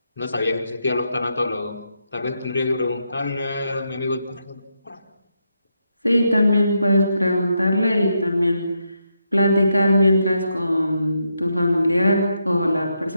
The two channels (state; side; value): inverted; both; correlation -0.82